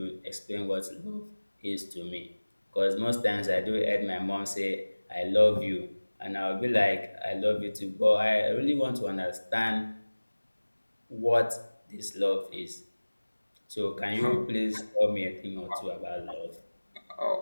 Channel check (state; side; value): inverted; both; correlation -1.00